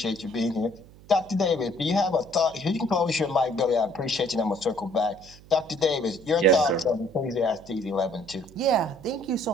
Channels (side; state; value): right; noise; hum, 22 dB below the sound